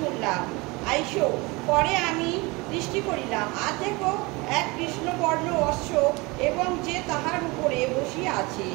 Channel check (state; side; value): quieter; left; 24.9 dB